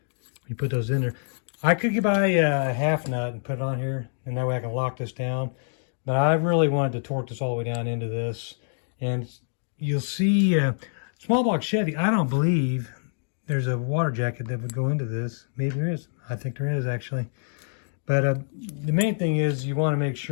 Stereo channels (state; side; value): silent; right; digital silence